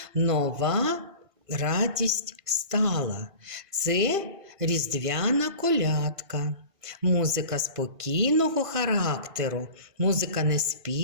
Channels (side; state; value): left; late; 1.5 ms